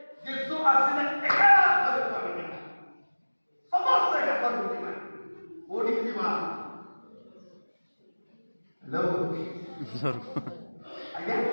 ଯୀଶୁ ଆସିଲେ ଏକା ଘରକୁ ଆମେ ଯିବା, ସମସ୍ତେ ଏକା ଘରକୁ ଯିବା। କୋଉଠିକି ଯିବା? ହ୍ୟାଲୋ ଆଜ୍ଞା,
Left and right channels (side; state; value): both; inverted; correlation -1.00